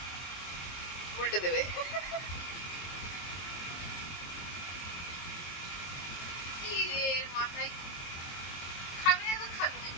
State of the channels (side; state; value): right; late; 22 ms